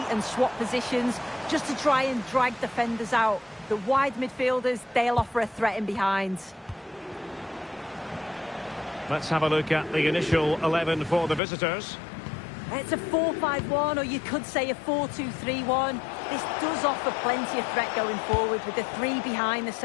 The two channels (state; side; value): drops out; right; at 11.4 s